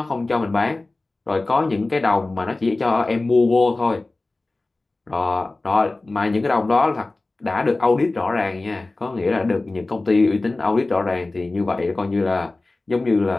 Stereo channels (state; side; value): quieter; right; 3.1 dB